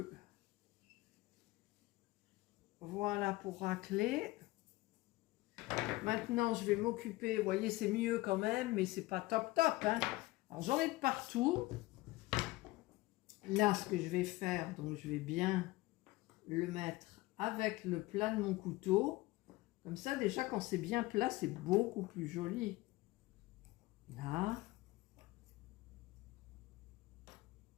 voilà, pour racler. Maintenant, je vais m'occuper, vous voyez, c'est mieux quand même, mais c'est pas top, hein. Alors, j'en ai de partout. Là, ce que je vais faire, donc je vais bien le mettre avec le plat de mon couteau. Comme ça, déjà, quand c'est bien plat, c'est beaucoup plus joli. Là.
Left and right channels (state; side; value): quieter; right; 19.8 dB